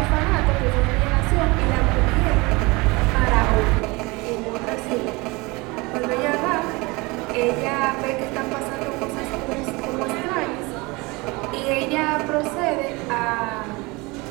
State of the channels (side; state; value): left; quieter; 24.7 dB